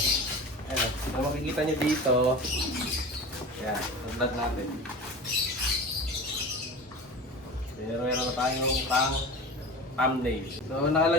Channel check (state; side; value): normal; both; correlation 0.33